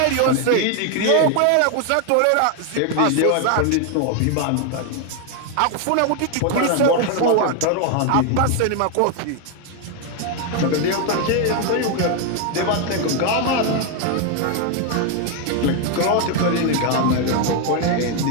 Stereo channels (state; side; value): different; both; correlation 0.01